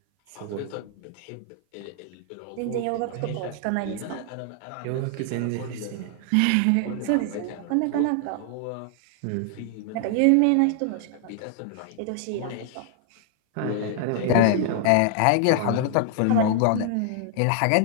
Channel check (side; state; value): both; different; correlation 0.00